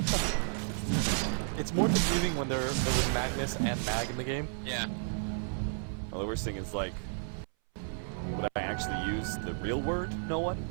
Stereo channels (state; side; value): silent; left; 56 dB below the other